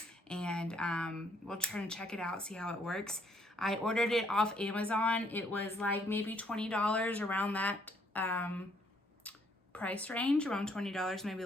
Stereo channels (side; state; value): both; normal; correlation 0.68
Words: and we'll try to check it out, see how it works. I ordered it off Amazon. It was like maybe $20, around that price range, around $20, maybe a